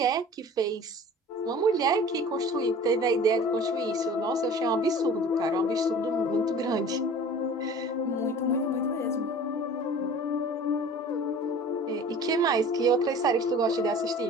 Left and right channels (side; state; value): both; normal; correlation 0.43